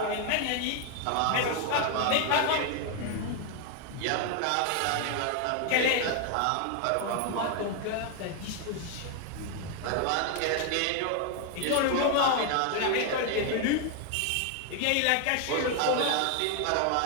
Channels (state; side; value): different; both; correlation 0.01